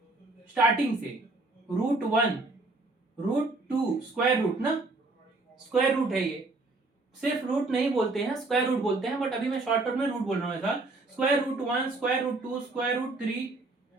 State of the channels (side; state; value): left; quieter; 3.2 dB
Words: स्टार्टिंग से √1 √2 स्क्वायर रूट ना, स्क्वायर रूट है ये, सिर्फ रूट नहीं बोलते हैं, स्क्वायर रूट बोलते हैं, बट अभी मैं शॉर्टकट में रूट बोल रहा हूं ऐसा। √1 √2 √3